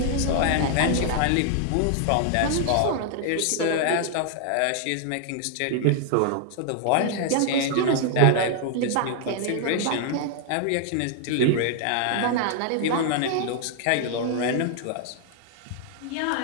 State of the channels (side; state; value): both; different; correlation 0.00